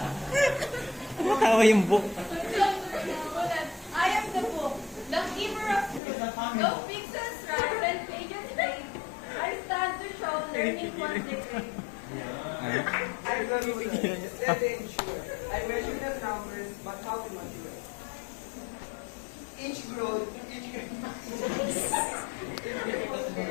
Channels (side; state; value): right; drops out; at 6.0 s